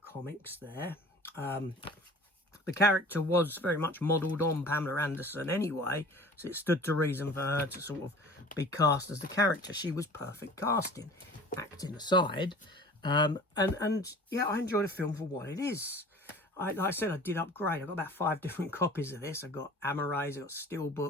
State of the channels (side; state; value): both; normal; correlation 0.44